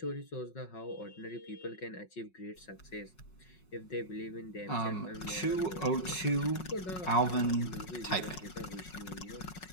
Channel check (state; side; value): late; right; 5.4 ms